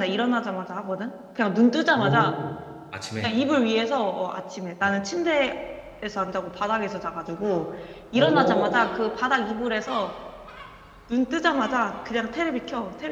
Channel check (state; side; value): identical; both; correlation 1.00